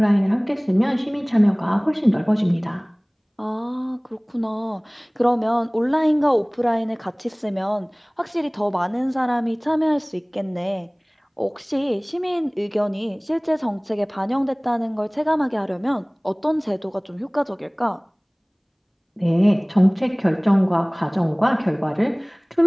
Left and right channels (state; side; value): identical; both; correlation 1.00